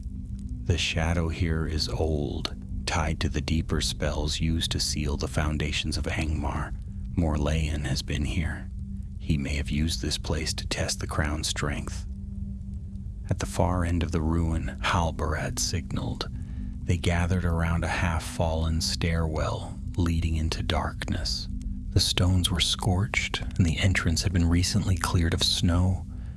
The shadow here is old, tied to the deeper spells used to seal the foundations of Angmar. Morlun has been here. He may have used this place to test the crown's strength. At the far end of the ruin, Halbarad signaled. They gathered around a half-fallen stairwell leading into darkness. The stones were scorched, and the entrance had been recently cleared of snow.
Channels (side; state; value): both; identical; correlation 1.00